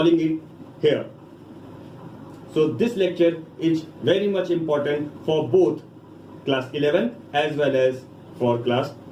it here. So this lecture is very much important for both class 11 as well as for class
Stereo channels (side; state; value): both; identical; correlation 1.00